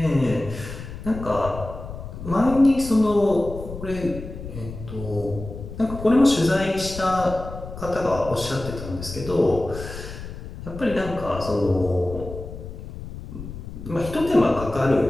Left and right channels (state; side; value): noise; left; rumble, 11 dB below the sound